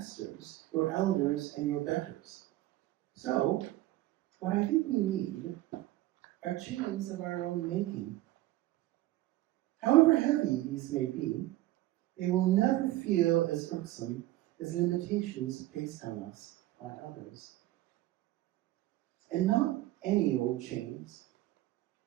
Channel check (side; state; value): left; quieter; 16.1 dB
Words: your elders and your betters. So, what I think we need are chains of our own making. However heavy these may be, they will never feel as irksome as limitations placed on us by others. And not any old chains.